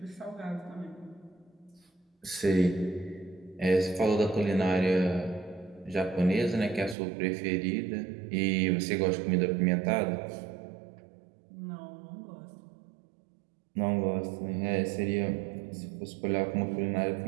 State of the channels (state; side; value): drops out; left; at 7.0 s